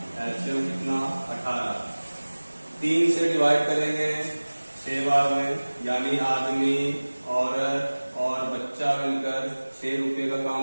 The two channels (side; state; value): both; inverted; correlation -1.00